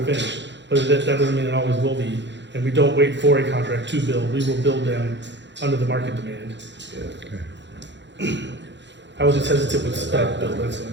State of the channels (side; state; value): left; late; 0.52 ms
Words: finish. But that doesn't mean it always will be. And we don't wait for a contract to build. We will build them under the market demand. I was just hesitant with spec build. That's the